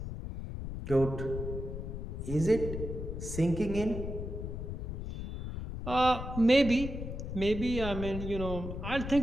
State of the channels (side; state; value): left; noise; rumble, 6 dB below the sound